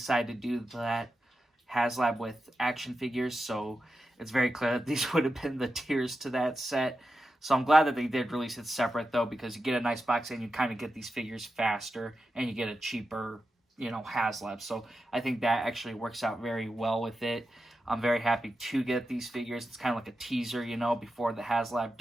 to do that HasLab with action figures. So it's very clear that these would have been the tiers to that set. So I'm glad that they did release it separate, though, because you get a nice box and you kind of get these figures faster and you get a cheaper, HasLab. So I think that actually works out very well with it. I'm very happy to get these figures. It's kind of like a teaser, before the HasLab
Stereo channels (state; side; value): normal; both; correlation 0.90